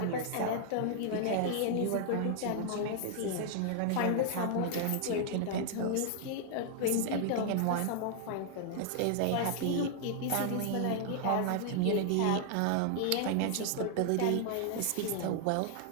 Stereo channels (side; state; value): both; different; correlation -0.01